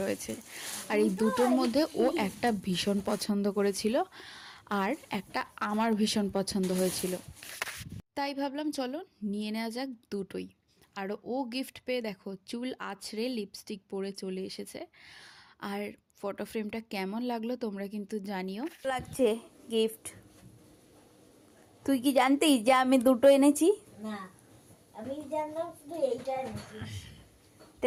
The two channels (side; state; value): both; identical; correlation 1.00